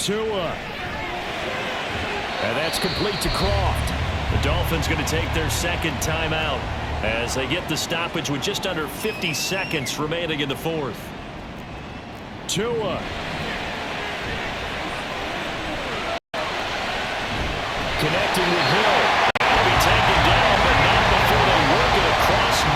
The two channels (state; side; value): identical; both; correlation 1.00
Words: And that's complete to Croft. The Dolphins going to take their 2nd timeout as they get the stoppage with just under 50 seconds remaining in the 4th. Tua. Connecting with Hill. He'll be taken down, but not before they work it across